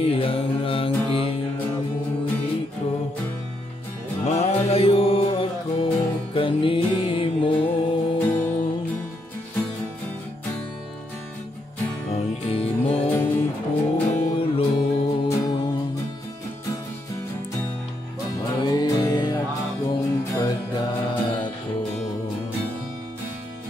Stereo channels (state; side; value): normal; both; correlation 0.78